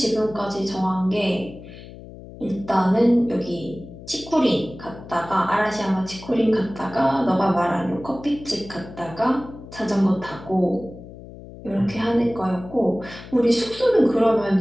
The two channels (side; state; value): left; noise; hum, 16 dB below the sound